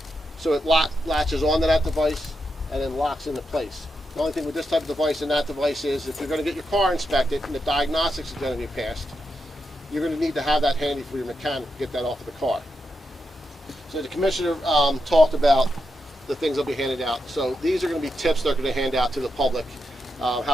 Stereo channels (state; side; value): normal; both; correlation 0.85